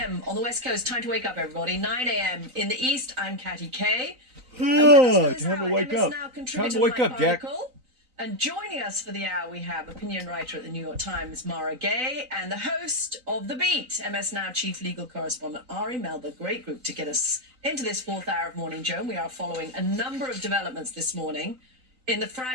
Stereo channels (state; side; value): late; left; 3.9 ms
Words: on the West Coast. Time to wake up, everybody. 9 a.m. in the East. I'm Katty Kay. Time to wake up. Time to wake up, Jack. And joining us for the hour, we have opinion writer at the New York Times, Mara Gay, and the host of The Beat, MS Now chief legal correspondent, Ari Melber. Great group to get us into this 4th hour of Morning Joe. We are following a number of developments this morning in the